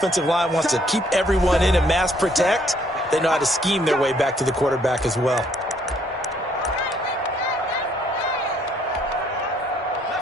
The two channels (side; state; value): both; normal; correlation 0.66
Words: line wants to keep everyone in and mass protect, they know how to scheme their way back to the quarterback as well.